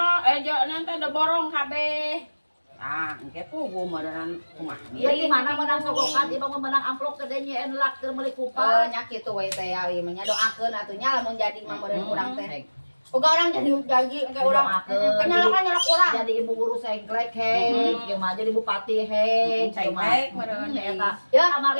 Yoro nanti ada borong kabeh. Ah, engke pugu meureun kumaha. Ya di mana menang sogokan, ieu mah menang amplop gede nya enlak keur meuli Oh, kupat. nya kitu we teh awi mah nya doakeun atuh nya lamun jadi mah meureun urang teh. Boga orang jadi engke urang nyolok urang. Jadi ibu guru sengklek he, ieu mah jadi bupati he, Cengklek meureun eta. Ya,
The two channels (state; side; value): inverted; both; correlation -1.00